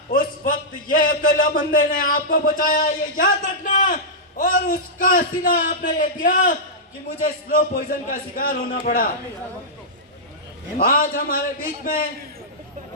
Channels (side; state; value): both; normal; correlation -0.12